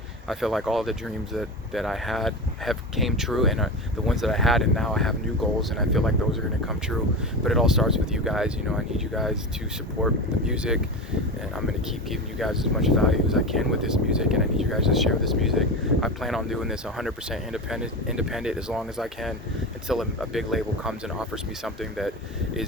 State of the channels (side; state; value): both; normal; correlation 0.24